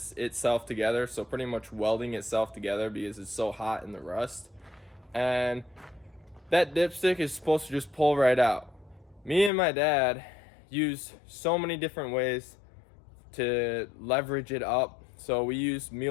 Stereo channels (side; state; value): right; drops out; at 9.5 s